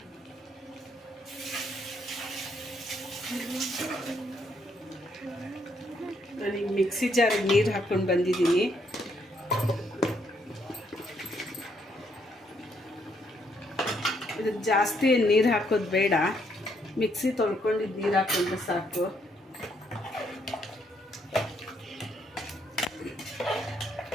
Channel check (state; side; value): normal; both; correlation 0.72